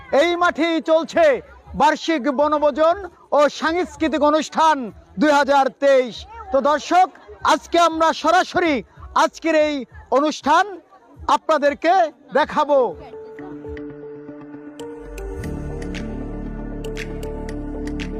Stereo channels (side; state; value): both; identical; correlation 1.00